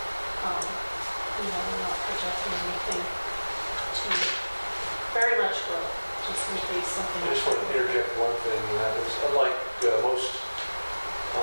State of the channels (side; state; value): both; inverted; correlation -1.00